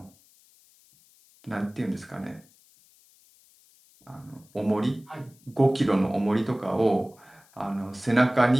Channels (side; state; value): left; noise; hiss, 29 dB below the sound